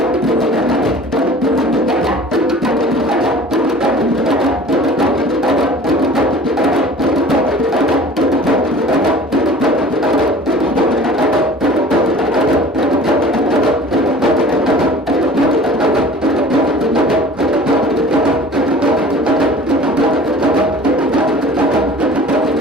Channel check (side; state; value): both; normal; correlation 0.44